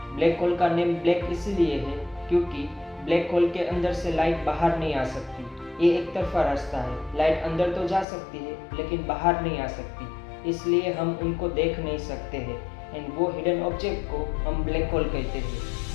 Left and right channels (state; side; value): drops out; right; at 8.1 s